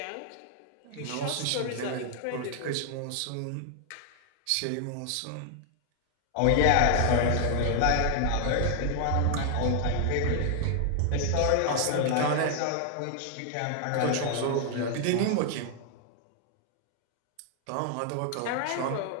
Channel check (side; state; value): both; different; correlation 0.00